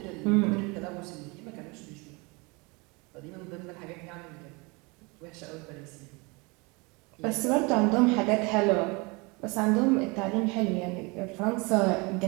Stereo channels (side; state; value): left; quieter; 27.6 dB